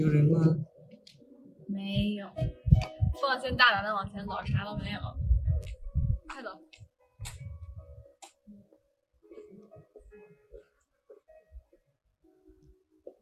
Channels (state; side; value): identical; both; correlation 1.00